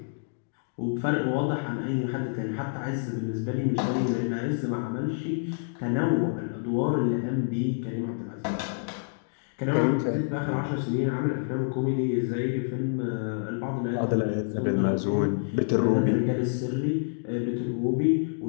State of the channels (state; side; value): silent; right; digital silence